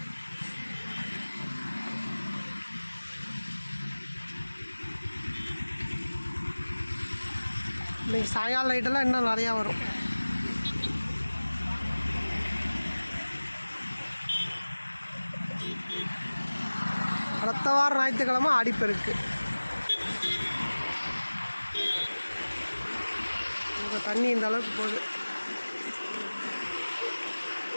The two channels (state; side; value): inverted; both; correlation -1.00